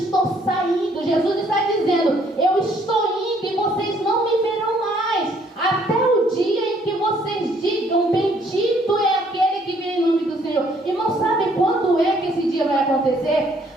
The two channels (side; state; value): both; normal; correlation 0.64